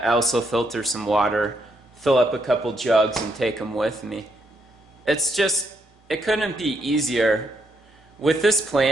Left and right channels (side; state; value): both; normal; correlation 0.76